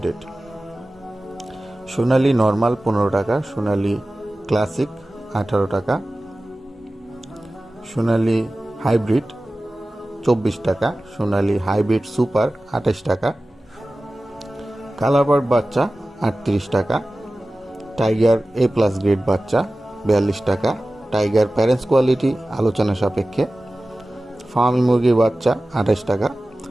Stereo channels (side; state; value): both; normal; correlation 0.96